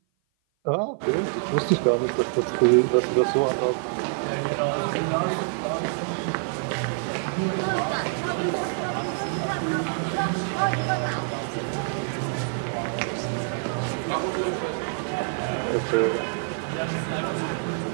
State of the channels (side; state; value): left; silent; 56 dB below the other